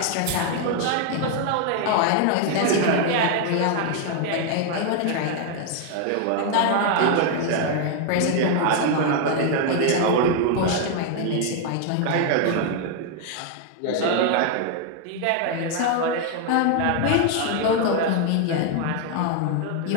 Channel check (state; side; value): different; both; correlation 0.00